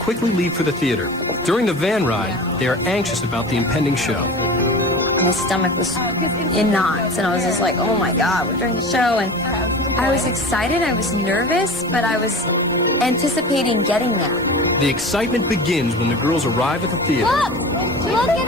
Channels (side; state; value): both; normal; correlation 0.35